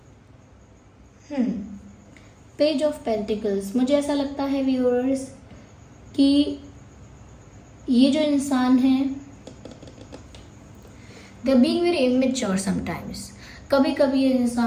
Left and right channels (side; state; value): both; identical; correlation 1.00